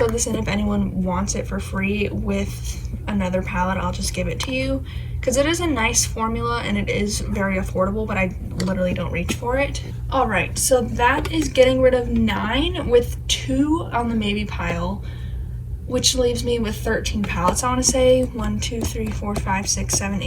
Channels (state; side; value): identical; both; correlation 1.00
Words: this in if anyone wants it for free with another palette. I'll just give it to you, because it is a nice formula and it is very affordable, but I literally don't reach for it. All right, so that is getting rid of 9 with 2 on the maybe pile, which leaves me with 13 palettes, I want to say. 1, 2, 3, 4, 5, 6, 7,